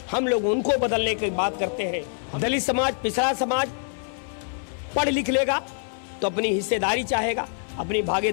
हम लोग उनको बदलने की बात करते हैं। दलित समाज, पिछड़ा समाज पढ़ लिख लेगा तो अपनी हिस्सेदारी चाहेगा, अपनी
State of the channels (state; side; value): silent; right; 62 dB below the other